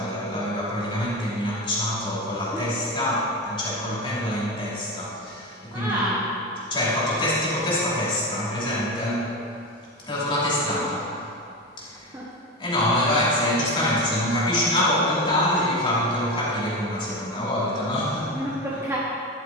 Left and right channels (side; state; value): both; normal; correlation 0.21